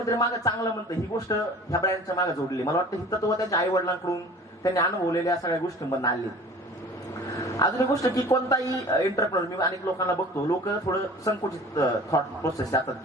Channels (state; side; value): normal; both; correlation 0.44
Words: मागे चांगलं म्हणतं, ही गोष्ट ह्या ब्रँडच्या मागे जोडली. मला वाटतं ही तत्व त्यांच्या आई वडिलांकडून त्यांनी अनुभवलेल्या सगळ्या गोष्टींमधून आली. अजून एक गोष्ट की कोणताही एंटरप्रेनर, मी अनेक लोकांना बघतो, लोक थोडं संकुचित थॉट प्रोसेस जातात